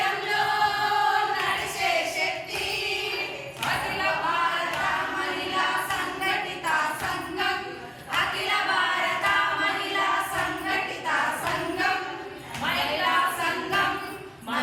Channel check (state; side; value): identical; both; correlation 1.00